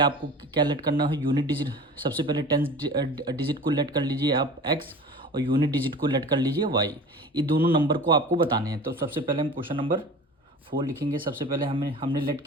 क्या लेट करना है? Unit digit. सबसे पहले टेंस डिजिट को लेट कर लीजिए आप x, और यूनिट डिजिट को लेट कर लीजिए y। ये दोनों नंबर को आपको बताने हैं। तो सबसे पहले हम क्वेश्चन नंबर 4 लिखेंगे। सबसे पहले हमने लेट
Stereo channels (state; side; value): normal; both; correlation 0.38